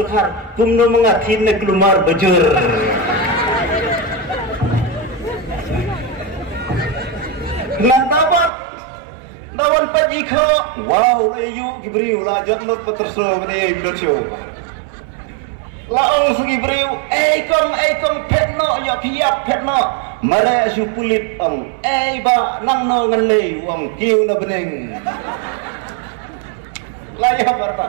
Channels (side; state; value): left; drops out; at 8.5 s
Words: kumno mengatin na kelumar bejur. Nantabat nawan pajiko. Wow layu gibriu la jotlot po terso bani bidotyo. Laong sugi gibriu kom petno yo piap petno. Mare asu kulit ang ba nang no ngalay ang kiw na bening layang